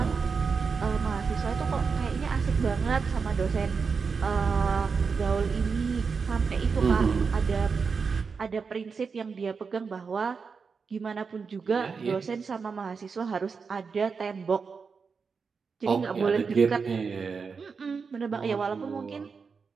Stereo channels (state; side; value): quieter; left; 5.3 dB